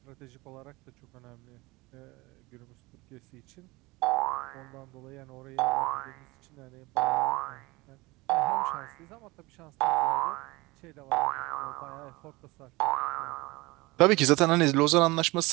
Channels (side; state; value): left; quieter; 22.6 dB